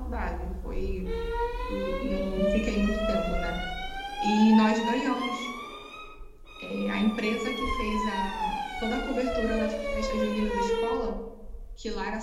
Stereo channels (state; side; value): identical; both; correlation 1.00